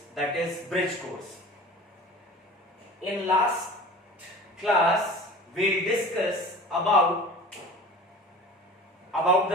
that is bridge course. In last class we'll discuss about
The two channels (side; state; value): both; normal; correlation 0.39